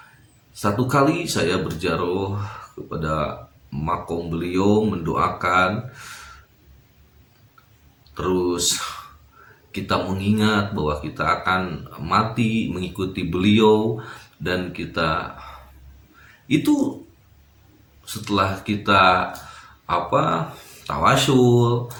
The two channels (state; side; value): identical; both; correlation 1.00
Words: Satu kali saya berziarah kepada makom beliau mendoakan, terus kita mengingat bahwa kita akan mati mengikuti beliau, dan kita itu setelah kita tawasul